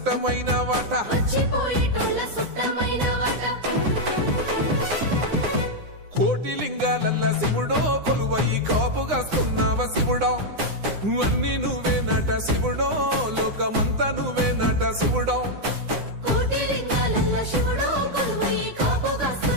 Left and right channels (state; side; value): late; left; 9.8 ms